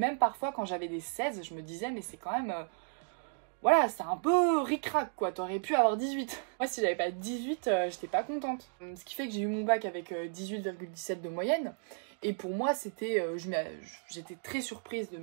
parfois quand j'avais des 16, je me disais mais c'est quand même... voilà, c'est un peu ric-rac quoi, t'aurais pu avoir 18. Moi si j'avais pas 18, j'étais pas contente. Ce qui fait que j'ai eu mon bac avec 18,17 de moyenne. Et pour moi c'était... j'étais très surprise de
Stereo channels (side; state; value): left; silent; digital silence